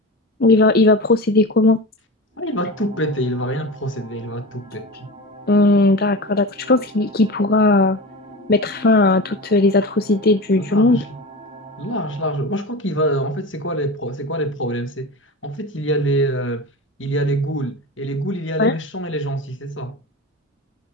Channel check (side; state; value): both; normal; correlation 0.28